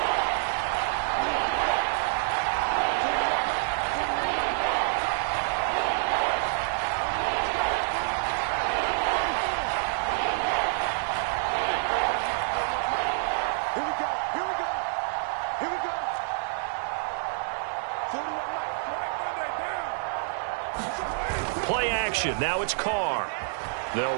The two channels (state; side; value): silent; left; digital silence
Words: Play action. Now it's Carr. They'll